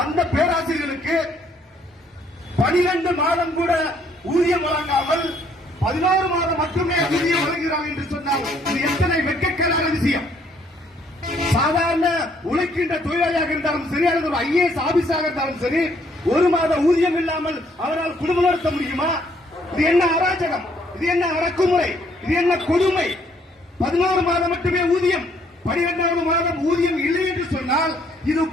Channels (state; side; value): normal; both; correlation 0.66